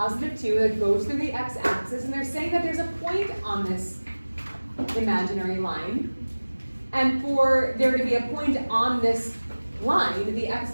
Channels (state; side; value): inverted; both; correlation -1.00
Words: 2 that goes through the x-axis, and they're saying that there's a point on this imaginary line. And for there to be a point on this line, the x